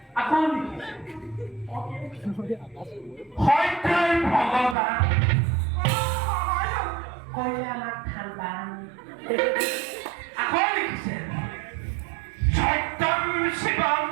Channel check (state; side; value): drops out; left; at 4.8 s